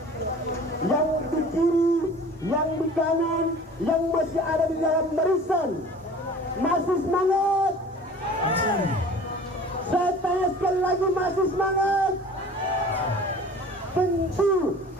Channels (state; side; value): normal; both; correlation 0.44